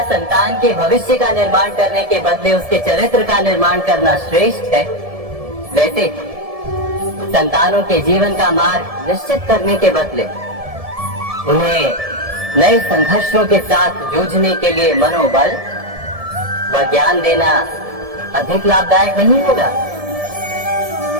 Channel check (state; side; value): late; left; 1.7 ms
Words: संतान के भविष्य का निर्माण करने के बदले उसके चरित्र का निर्माण करना श्रेष्ठ है, वैसे संतानों के जीवन का मार्ग निश्चित करने के बदले उन्हें नए संघर्षों के साथ जूझने के लिए मनोबल व ज्ञान देना अधिक लाभदायक नहीं होगा?